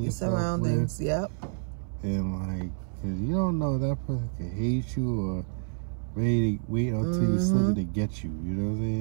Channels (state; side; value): silent; left; 59 dB below the other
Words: yourself surroundings, with. And like, cause you don't know, that person could hate you or wait until you slip to get you. You know what I'm